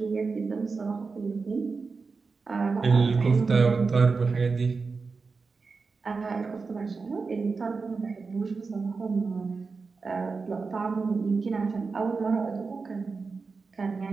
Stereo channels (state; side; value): quieter; left; 4.5 dB